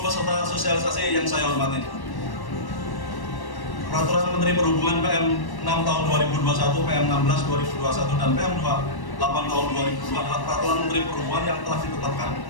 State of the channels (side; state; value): right; late; 1.1 ms